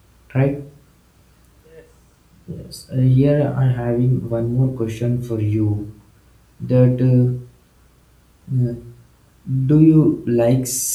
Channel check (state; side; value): identical; both; correlation 1.00